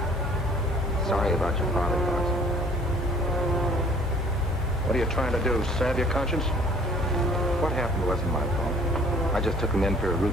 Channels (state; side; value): normal; both; correlation 0.55